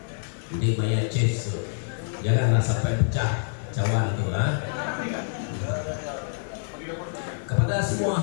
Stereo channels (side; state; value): right; silent; digital silence